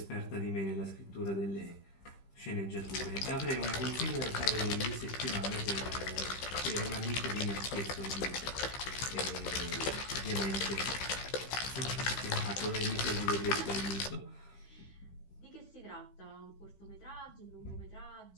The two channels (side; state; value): right; late; 15 ms